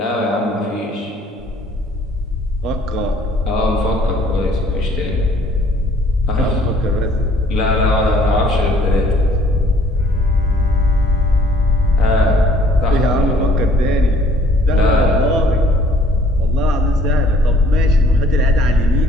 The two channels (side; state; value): both; normal; correlation 0.58